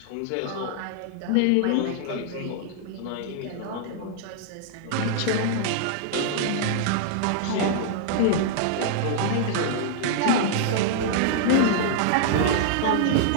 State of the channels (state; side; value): different; both; correlation -0.01